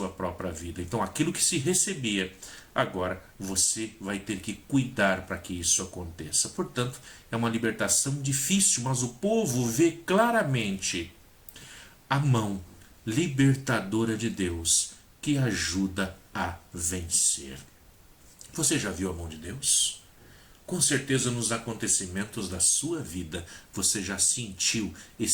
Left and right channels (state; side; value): identical; both; correlation 1.00